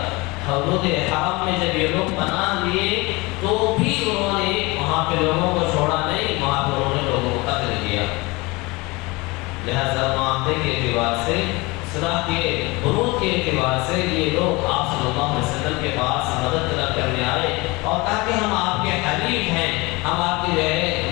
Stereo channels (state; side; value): quieter; right; 24.2 dB